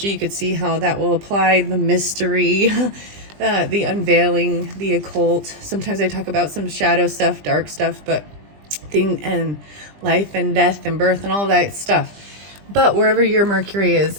you could see how that will apply. The mystery, the unveiling, the occult. Sometimes I talk about some shadow stuff, dark stuff, but thing and life and death and birth and all that stuff. But wherever your Mercury is,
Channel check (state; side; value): late; left; 20 ms